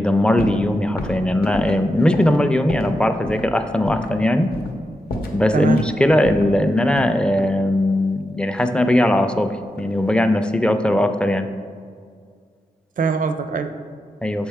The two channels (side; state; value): both; normal; correlation 0.87